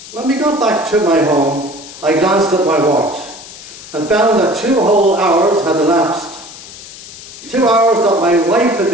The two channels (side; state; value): left; noise; hiss, 16 dB below the sound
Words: When we got back to my home, I glanced at my watch and found that 2 whole hours had elapsed. 2 hours that my wife had